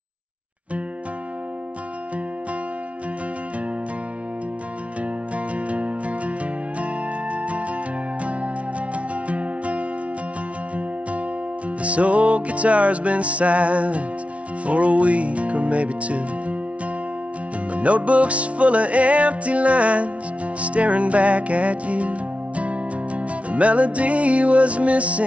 This old guitar's been silent for a week or maybe two, and my notebook's full of empty lines staring back at you. The melody was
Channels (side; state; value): left; late; 0.063 ms